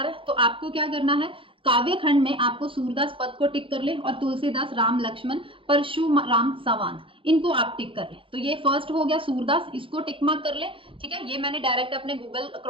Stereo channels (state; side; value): late; left; 0.25 ms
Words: रहा है। तो आपको क्या करना है, काव्य खंड में आपको सूरदास पद को टिक कर ले और तुलसीदास, राम लक्ष्मण, परशुराम, संवाद, इनको आप टिक कर ले। तो ये फर्स्ट हो गया सूरदास, इसको टिक मार्क कर ले, ठीक है। ये मैंने डायरेक्ट अपने गूगल